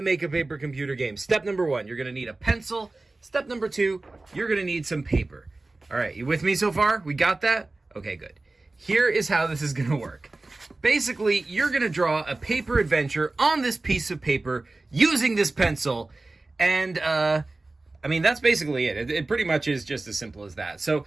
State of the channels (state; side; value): quieter; left; 3.2 dB